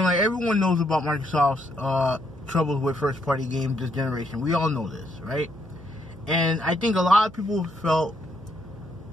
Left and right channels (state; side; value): noise; right; hum, 21 dB below the sound